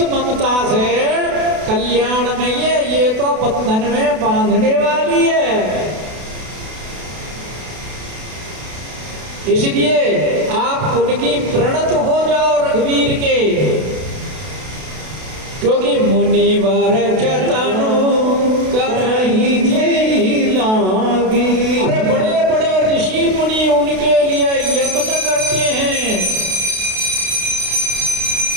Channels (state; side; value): late; left; 32 ms